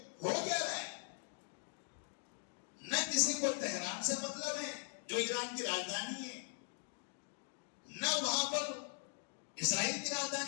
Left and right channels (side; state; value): right; silent; 51 dB below the other